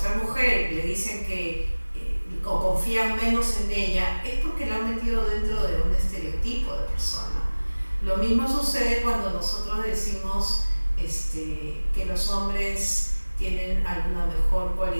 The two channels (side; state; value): both; inverted; correlation -1.00